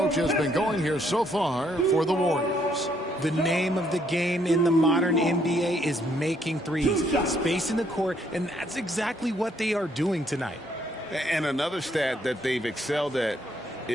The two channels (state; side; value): normal; both; correlation 0.69